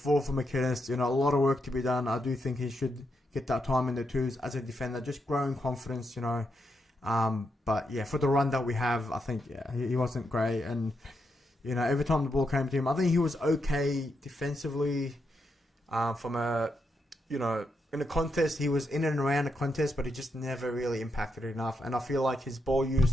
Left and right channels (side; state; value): both; normal; correlation 0.82